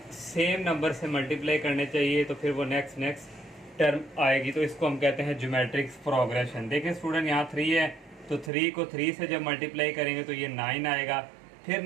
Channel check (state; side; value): drops out; left; at 8.5 s